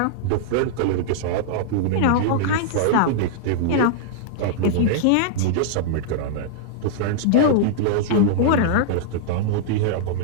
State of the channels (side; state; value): both; different; correlation -0.02